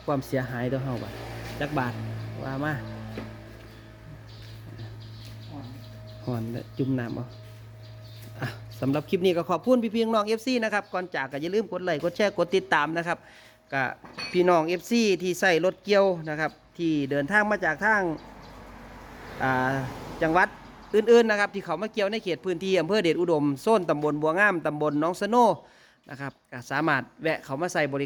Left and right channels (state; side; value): identical; both; correlation 1.00